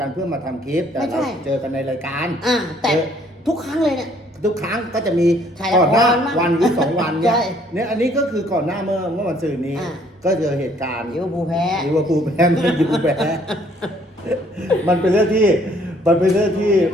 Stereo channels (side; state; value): both; normal; correlation 0.62